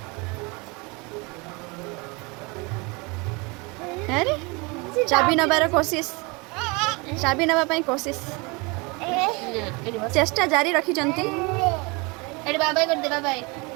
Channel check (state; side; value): quieter; left; 27.9 dB